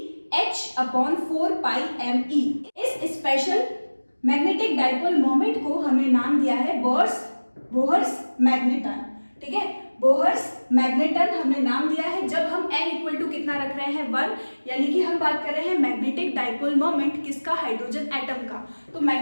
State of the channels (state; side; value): inverted; both; correlation -1.00